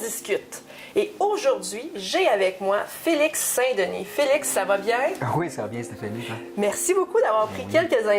Et aujourd'hui, j'ai avec moi Félix Saint-Denis. Félix, ça va bien? Oui, ça va bien, Stéphanie. Toi? Merci beaucoup d'avoir pris quelques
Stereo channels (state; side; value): identical; both; correlation 1.00